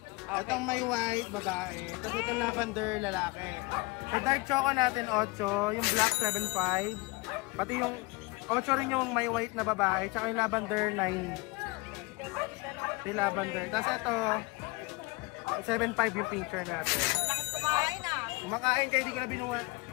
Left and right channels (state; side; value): quieter; right; 25.1 dB